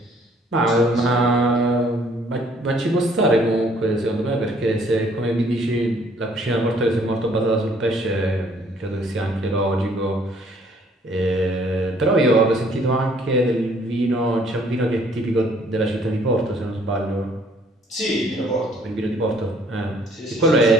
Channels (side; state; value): both; normal; correlation 0.61